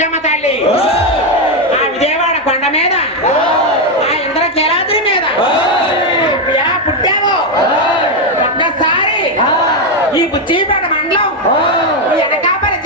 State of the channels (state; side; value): normal; both; correlation 0.05